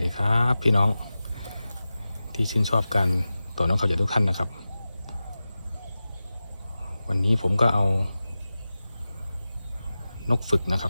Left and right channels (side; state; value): both; inverted; correlation -0.95